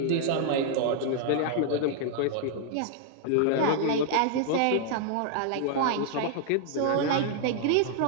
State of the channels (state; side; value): different; both; correlation 0.00